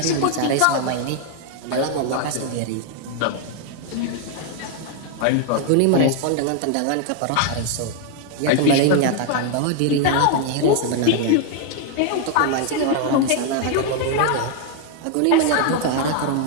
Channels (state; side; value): different; both; correlation 0.00